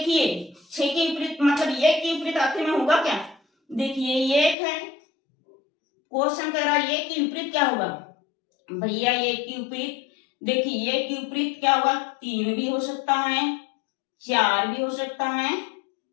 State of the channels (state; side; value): drops out; right; at 4.5 s